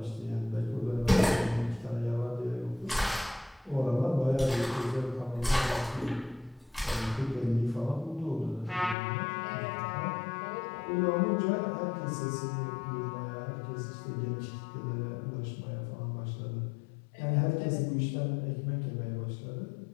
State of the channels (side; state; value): right; drops out; at 9.0 s